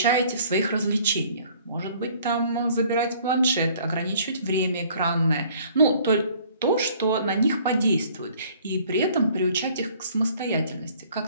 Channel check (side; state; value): both; inverted; correlation -0.56